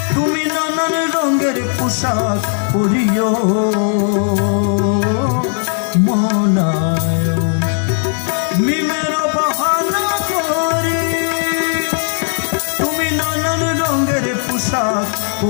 পোশাক পরিও মলায় মিমের বাহানা করি তুমি নানান রঙের পোশাক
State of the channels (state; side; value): silent; right; 60 dB below the other